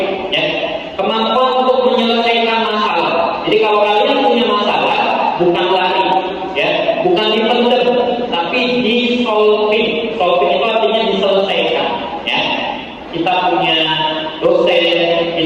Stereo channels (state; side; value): identical; both; correlation 1.00